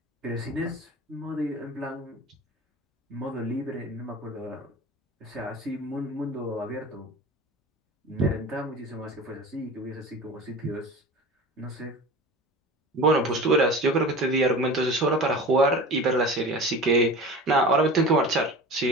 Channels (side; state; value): both; normal; correlation 0.34